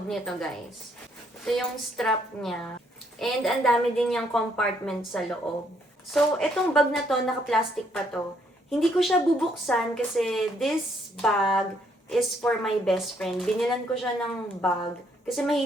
nito, guys. Ito yung strap niya. And ang dami din yung compartment sa loob. So, itong bag na to, naka-plastic pa to. Hindi ko siya bubuksan kasi this bag is for my best friend. Binilan ko siya ng bag kasi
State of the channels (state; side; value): normal; both; correlation 0.70